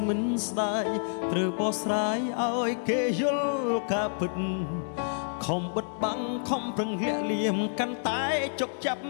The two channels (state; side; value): silent; right; 59 dB below the other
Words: មិនស្ដាយត្រូវបោះស្រាយឲ្យគេយល់ការពិតខំបិទបាំងខំប្រឹងលាក់លៀមកាន់តែជប់ចាប់